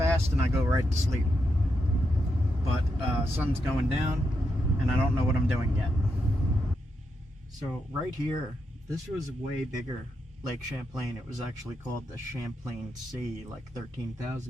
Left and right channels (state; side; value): normal; both; correlation 0.83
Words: and I go right to sleep. But sun's going down, and I don't know what I'm doing yet. So right here, this was way bigger. Lake Champlain. It was actually called the Champlain Sea like